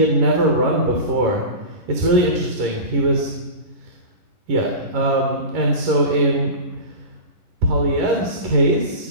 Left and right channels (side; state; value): left; late; 11 ms